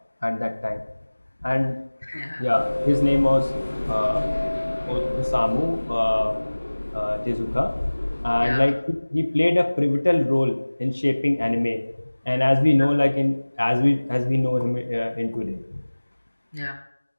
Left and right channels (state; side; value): inverted; both; correlation -1.00